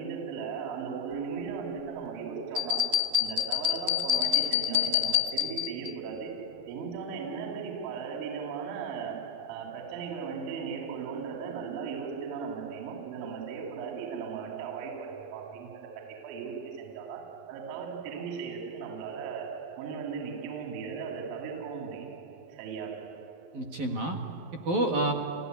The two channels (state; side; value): late; left; 12 ms